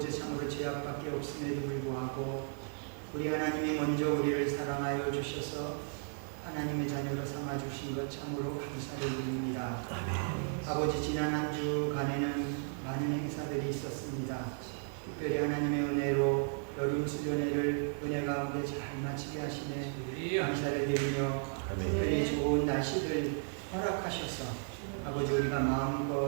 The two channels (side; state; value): left; silent; 55 dB below the other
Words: 참으로 죄악밖에 없음에도 불구하고 우리 하나님이 먼저 우리를 사랑하여 주셔서 하나님의 자녀로 삼아 주신 것 참으로 감사를 드립니다. 아버지, 지난 한 주간에는 많은 행사들이 있었습니다. 특별히 하나님의 은혜로 여름 수련회를 은혜 가운데 잘 마치게 하시네 감사를 드리며 특별히 좋은 날씨들 허락하셔서 아버지 우리가